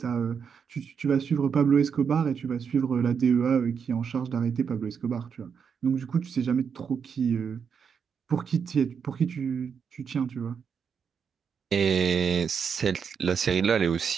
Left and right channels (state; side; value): quieter; left; 6.7 dB